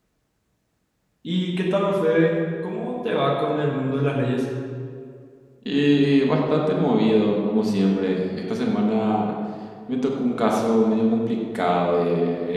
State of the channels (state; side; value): identical; both; correlation 1.00